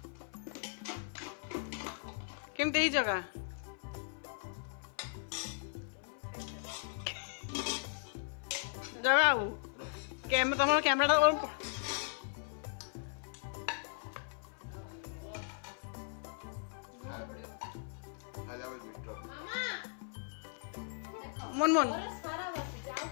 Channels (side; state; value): right; silent; 53 dB below the other